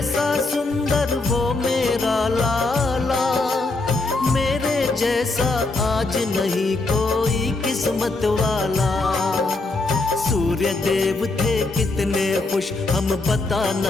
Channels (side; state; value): right; quieter; 3.3 dB